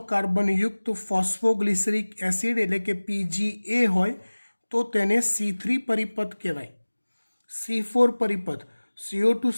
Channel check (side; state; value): both; inverted; correlation -1.00